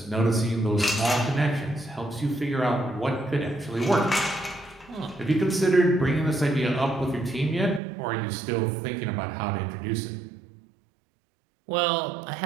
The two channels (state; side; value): drops out; left; at 7.8 s